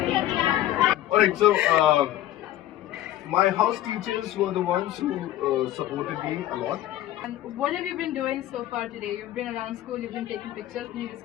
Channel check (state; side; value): quieter; right; 13.7 dB